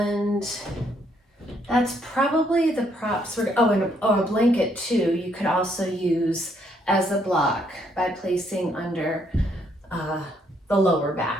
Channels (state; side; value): normal; both; correlation 0.71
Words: that's probably the props. And a blanket too, you could also use as a block by placing under the lower